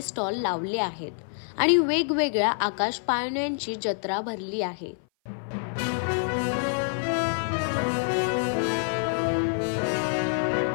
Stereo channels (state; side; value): silent; right; 57 dB below the other